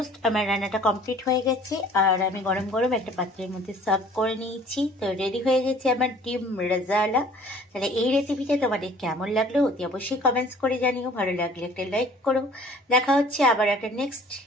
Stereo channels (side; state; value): both; normal; correlation 0.52